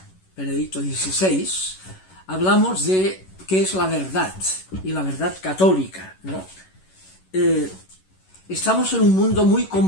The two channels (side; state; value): right; late; 11 ms